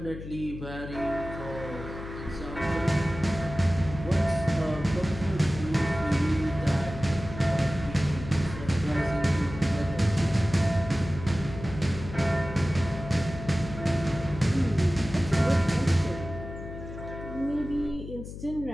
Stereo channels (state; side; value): noise; left; hum, 10 dB below the sound